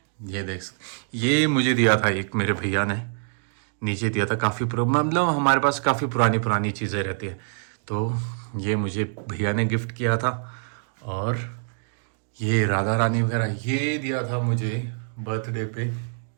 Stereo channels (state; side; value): silent; left; digital silence